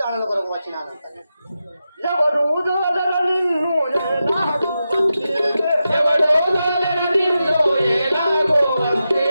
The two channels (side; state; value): both; inverted; correlation -0.90